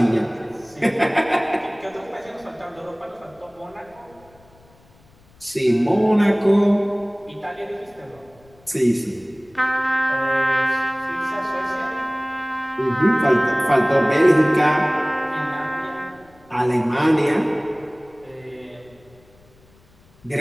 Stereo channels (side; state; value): left; noise; rumble, 29 dB below the sound